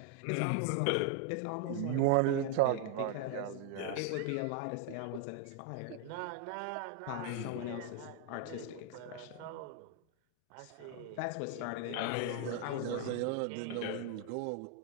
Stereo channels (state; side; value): different; both; correlation 0.01